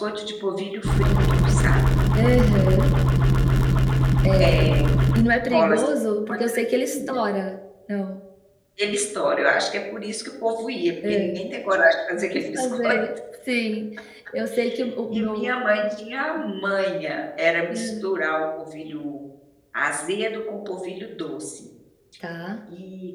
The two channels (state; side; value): identical; both; correlation 1.00